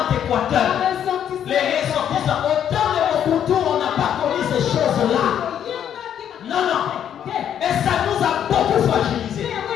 Équateur, les ressortissants. Au temps de Mobutu, on n'a pas connu ces choses-là. Non, non. Et ça nous a beaucoup fragilisés.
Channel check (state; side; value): quieter; right; 9.5 dB